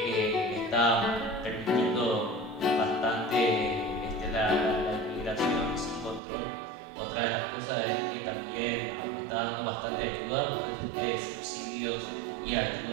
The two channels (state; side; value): drops out; left; at 6.2 s